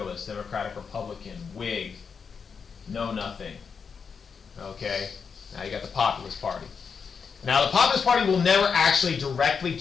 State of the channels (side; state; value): right; quieter; 6.0 dB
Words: Democratic, Republican, Whig, Know Nothing. Okay, now you got the Populist Party. Now the Populist Party will never actually directly